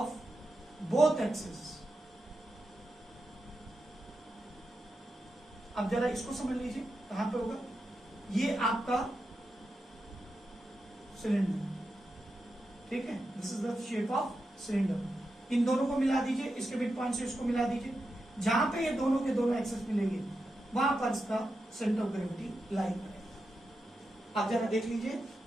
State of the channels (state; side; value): normal; both; correlation 0.88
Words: both axes. अब जरा इसको समझ लीजिए कहां पे होगा, ये आपका सिलेंडर, ठीक है, this is the shape of cylinder. इन दोनों को मिला दीजिए, इसके मिड पॉइंट से इसको मिला दीजिए, जहां पे ये दोनों के दोनों एक्सेस मिलेंगे वहां पर इसका सेंटर ऑफ ग्रेविटी लाई करेगा। आप जरा देख लीजिए